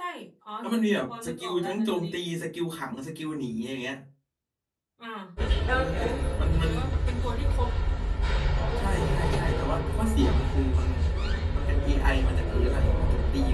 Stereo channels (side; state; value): both; identical; correlation 1.00